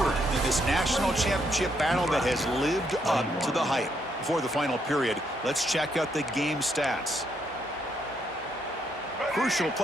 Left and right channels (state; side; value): normal; both; correlation 0.75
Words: in this national championship battle that has lived up to the hype. Before the final period, let's check out the game stats. Crucial